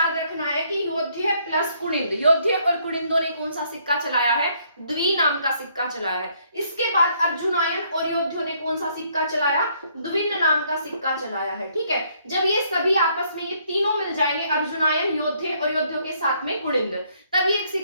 रखना है कि योद्धे प्लस कुनिंद, योद्धे और कुनिंदों ने कौन सा सिक्का चलाया है? द्वि नाम का सिक्का चलाया है। इसके बाद अर्जुनायन और योद्धियों ने कौन सा सिक्का चलाया? द्विन नाम का सिक्का चलाया है। ठीक है, जब ये सभी आपस में ये तीनों मिल जाएंगे, अर्जुनायन, योद्धे और योद्धियों के साथ में कुनिंद, तब ये एक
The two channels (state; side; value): inverted; both; correlation -0.68